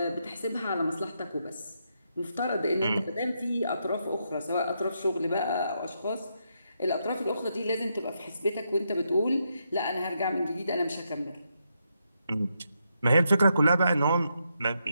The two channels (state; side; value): inverted; both; correlation -0.81